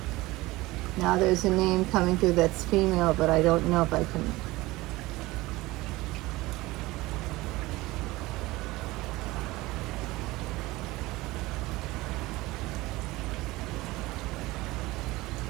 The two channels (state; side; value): quieter; left; 19.9 dB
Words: Now there's a name coming through that's female, but I don't know if I can.